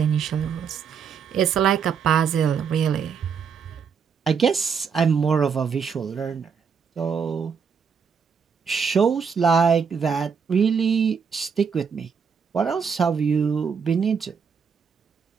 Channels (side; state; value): left; quieter; 6.4 dB